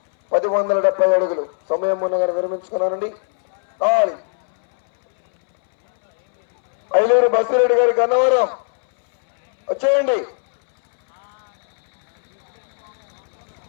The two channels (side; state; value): right; silent; 65 dB below the other